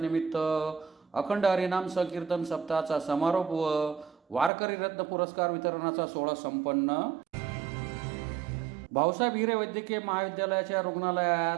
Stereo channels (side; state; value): left; drops out; at 4.5 s